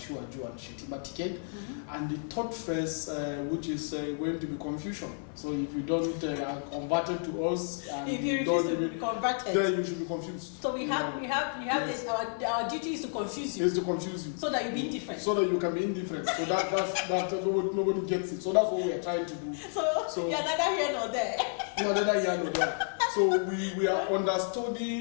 and Shettima ticket. And the third phase, which is going to be confusion. So if you don't convert to us, and if you refuse to be converted, then you should be confused. So we have this, our duty is to confuse you. Is to confuse you. So that you be indifferent. So that you can be indifferent. So that nobody gets it. So that's what we are trying to do. So you're neither here nor there. You're neither here nor there. So we are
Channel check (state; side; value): silent; right; 57 dB below the other